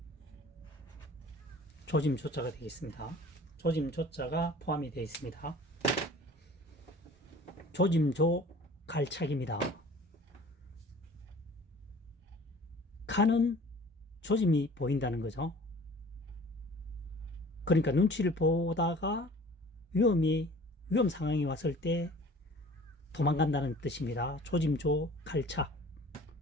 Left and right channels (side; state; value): both; normal; correlation 0.47